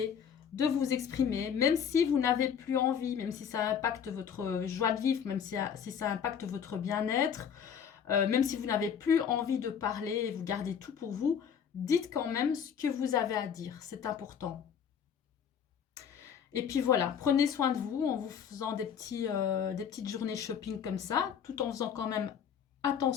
de vous exprimer, même si vous n'avez plus envie, même si ça impacte votre joie de vivre, même si ça impacte votre bien-être. même si vous n'avez plus envie de parler et vous gardez tout pour vous, dites quand même ce que vous avez à dire, c'est important. Et puis voilà, prenez soin de vous en vous faisant des petites journées shopping comme ça, tout en faisant quand même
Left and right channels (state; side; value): quieter; right; 7.8 dB